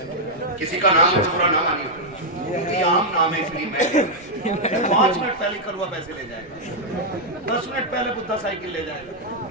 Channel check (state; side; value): normal; both; correlation -0.04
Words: کسی کا نام بھورا نہ مانی، کیونکہ یہ عام نام ہے اس لیے میں 5 منٹ پہلے کروا پیسے لے جائے گا، 10 منٹ پہلے بدھا سائیکل لے جائے گا.